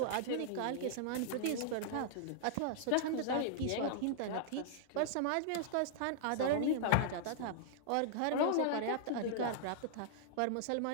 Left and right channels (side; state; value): both; different; correlation -0.01